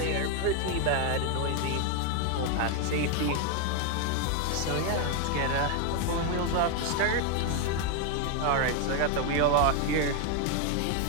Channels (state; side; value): different; both; correlation 0.01